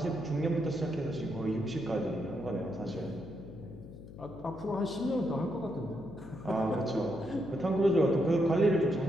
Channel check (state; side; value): noise; left; hum, 15 dB below the sound